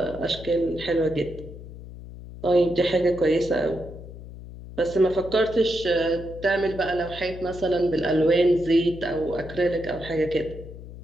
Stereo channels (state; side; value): noise; left; hum, 14 dB below the sound